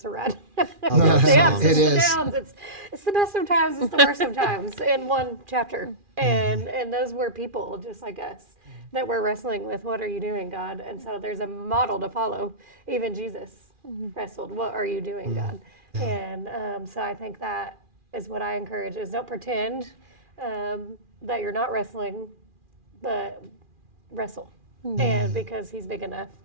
ride. It's the ups, it's the downs. It's the best of times, it's the worst of times in one chapter. And those were people just like us that were wrestling with, what are you doing, God? And so there's a model to follow. Even Jesus wrestled, what are you doing, God? And so I think that is what I encourage, is don't pretend that you're not wrestling, but wrestle. And because he's big enough.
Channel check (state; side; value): late; left; 2.4 ms